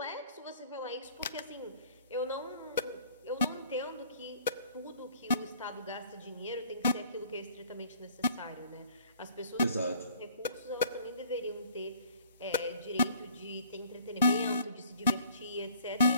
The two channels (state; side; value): inverted; both; correlation -0.55